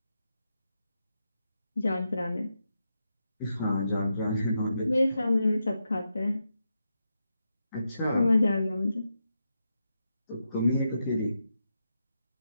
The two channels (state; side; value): inverted; both; correlation -0.85